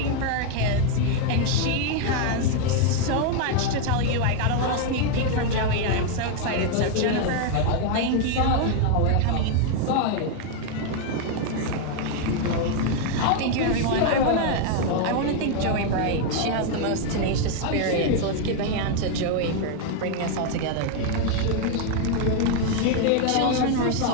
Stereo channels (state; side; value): different; both; correlation 0.01